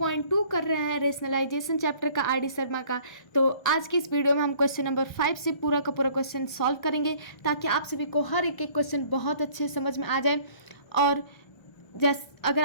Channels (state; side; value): late; right; 1.3 ms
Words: कर रहे हैं रेशनलाइजेशन चैप्टर का आर डी शर्मा का, तो आज की इस वीडियो में हम क्वेश्चन नंबर 5 से पूरा का पूरा क्वेश्चन सॉल्व करेंगे ताकि आप सभी को हर एक क्वेश्चन बहुत अच्छे समझ में आ जाए। और अगर